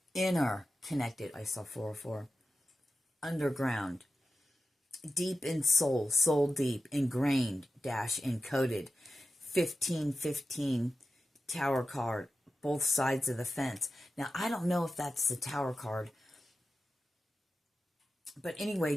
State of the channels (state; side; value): normal; both; correlation 0.93